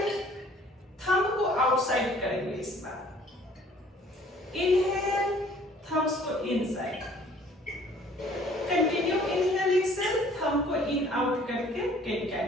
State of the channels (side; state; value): both; normal; correlation 0.55